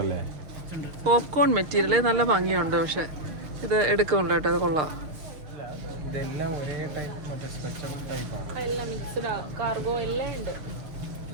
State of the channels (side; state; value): left; late; 6.6 ms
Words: പോപ്കോൺ മെറ്റീരിയൽ നല്ല ഭംഗിയുണ്ട്. പക്ഷെ ഇത് എടുക്കുന്നുണ്ട് കേട്ടോ. അത് കൊള്ളാം. എല്ലാം മിക്സ്ഡ് കാർഗോ എല്ലാം ഉണ്ട്.